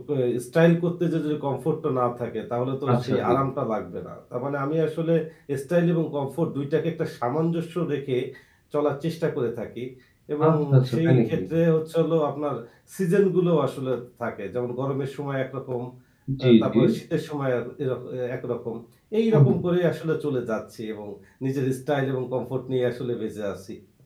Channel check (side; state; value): both; identical; correlation 1.00